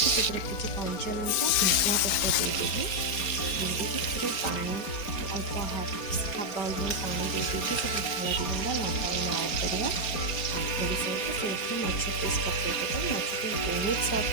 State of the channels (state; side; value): late; right; 4.2 ms